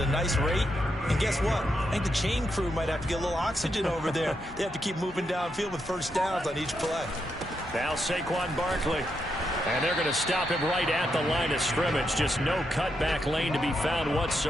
nice rate. And guess what? I think the chain crew might have to get a little oxygen over there. They have to keep moving downfield with first downs on each play. Now Saquon Barkley. And they're going to stop him right at the line of scrimmage. Just no cutback lane to be found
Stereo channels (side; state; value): both; normal; correlation 0.82